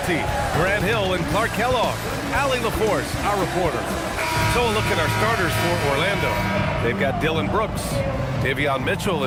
Grant Hill and Clark Kellogg, Allie LaForce, our reporter. So a look at our starters for Orlando. They've got Dylan Brooks. Davion Mitchell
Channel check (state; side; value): identical; both; correlation 1.00